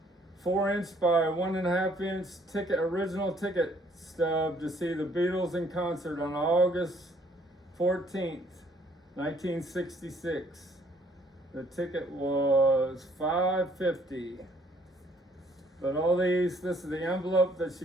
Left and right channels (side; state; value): both; normal; correlation 0.63